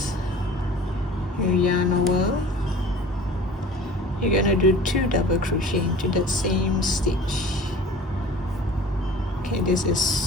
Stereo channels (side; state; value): both; normal; correlation 0.43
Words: You yarn over. You're gonna do 2 double crochet into that same stitch. Okay, this